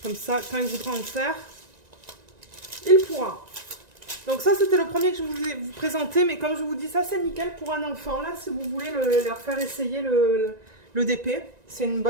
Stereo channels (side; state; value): left; late; 1.9 ms